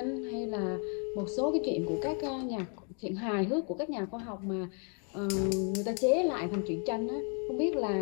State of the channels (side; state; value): right; quieter; 39.9 dB